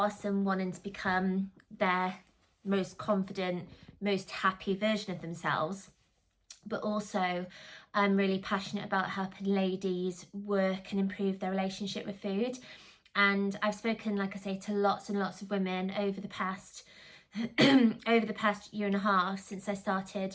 and wanting to become their most confident, most happy version of themselves, but also I'm really passionate about helping ladies work and improve their relationship with food. And I've spoken, like I say, to lots and lots of women over the past over the past year and a half since I started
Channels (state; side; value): identical; both; correlation 1.00